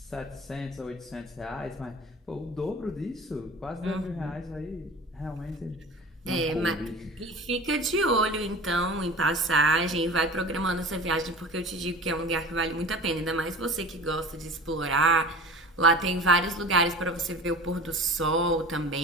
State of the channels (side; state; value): both; normal; correlation 0.39